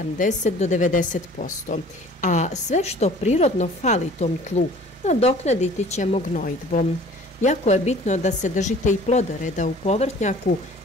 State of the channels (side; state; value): both; normal; correlation 0.49